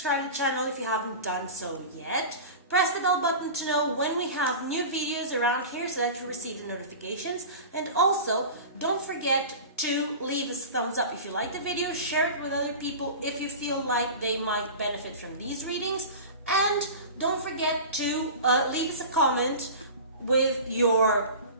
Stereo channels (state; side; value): inverted; both; correlation -0.33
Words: to the channel if you haven't done so yet. Press the bell button to know when we have new videos around here so that you receive the notifications. And also, don't forget to leave us a thumbs up if you like the video. Share it with other people if you feel like they might benefit from these readings. And don't forget to leave us a comment with your